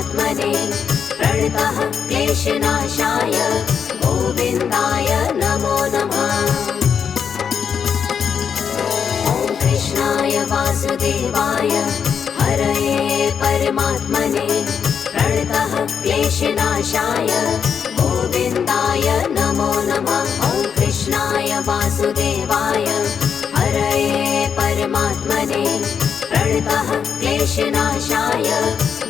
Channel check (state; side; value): quieter; right; 7.1 dB